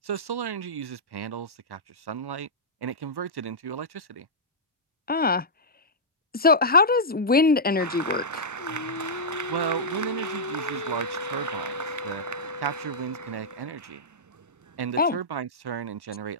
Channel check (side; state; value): both; normal; correlation -0.11